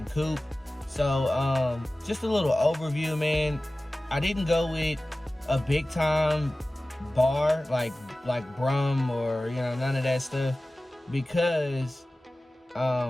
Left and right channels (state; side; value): normal; both; correlation 0.97